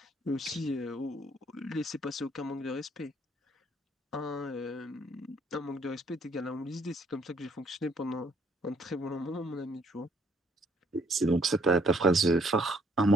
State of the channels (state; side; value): normal; both; correlation 0.65